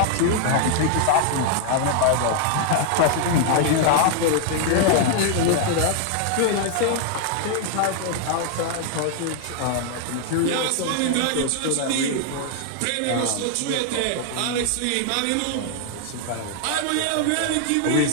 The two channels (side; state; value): both; different; correlation 0.00